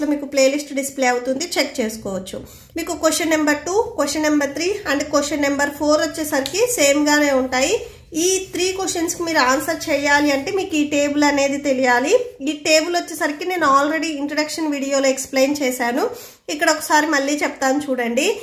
లో మీకు ప్లేలిస్ట్ డిస్ప్లే అవుతుంది, చెక్ చేసుకోవచ్చు. మీకు question number 2, question number 3 and question number 4 వచ్చేసరికి సేమ్ గానే ఉంటాయి. ఈ 3 క్వశ్చన్స్ కి మీరు ఆన్సర్ చేయాలి అంటే మీకు ఈ టేబుల్ అనేది తెలియాలి. ఈ టేబుల్ వచ్చేసరికి నేను ఆల్రెడీ ఇంట్రడక్షన్ వీడియోలో ఎక్స్ప్లెయిన్ చేశాను. ఇక్కడ ఒకసారి మళ్ళీ చెప్తాను చూడండి.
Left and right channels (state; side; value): identical; both; correlation 1.00